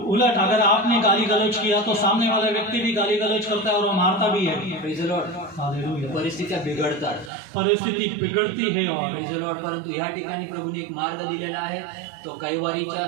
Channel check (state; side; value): drops out; left; at 7.3 s